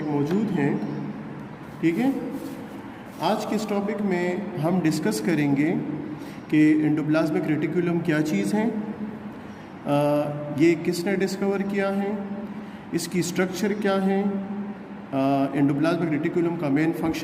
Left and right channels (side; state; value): both; identical; correlation 1.00